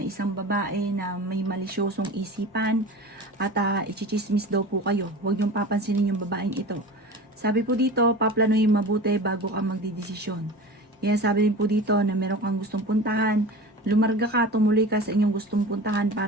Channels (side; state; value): both; normal; correlation 0.34